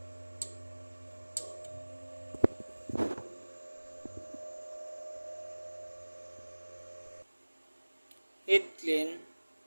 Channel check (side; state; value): both; inverted; correlation -1.00